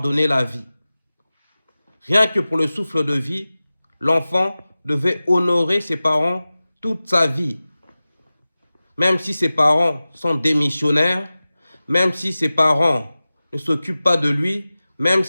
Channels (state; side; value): inverted; both; correlation -0.97